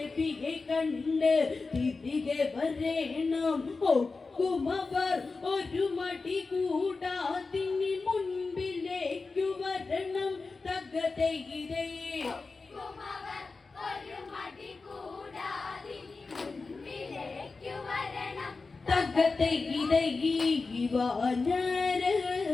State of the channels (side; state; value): right; quieter; 4.0 dB